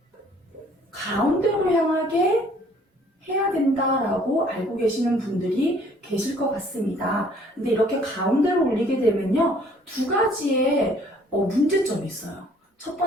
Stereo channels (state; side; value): normal; both; correlation 0.58